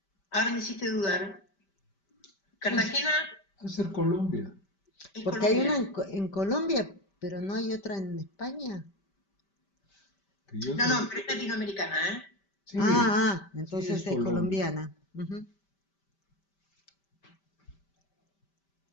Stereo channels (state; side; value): late; right; 5.1 ms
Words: ahora me hiciste dudar. Es, Cartagena es ser Colombia. es Porque hay una Colombia. en Colombia, pero no hay otra en España. Que yo No, sé. no, pero es latinoamericana, ¿eh? Sí, sí, es Entonces es Colombia. colombiana. Ujú.